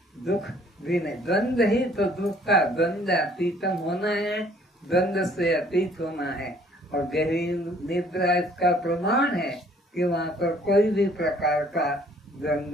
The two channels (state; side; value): normal; both; correlation 0.59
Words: दुख भी नहीं। द्वंद्व ही तो दुख का, द्वंद्व अतीतम होना है, द्वंद्व से अतीत होना है। और गहरी निद्रा इसका प्रमाण है कि वहाँ पर कोई भी प्रकार का